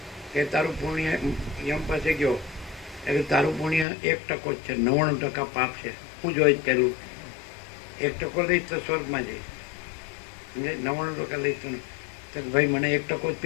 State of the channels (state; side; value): drops out; right; at 3.9 s